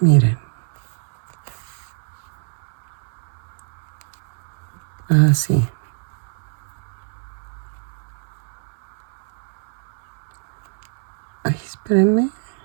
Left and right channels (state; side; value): silent; left; 62 dB below the other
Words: Así. Ay, espérenme.